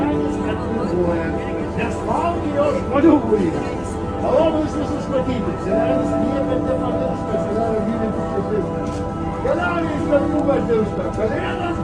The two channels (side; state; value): right; noise; rumble, 24 dB below the sound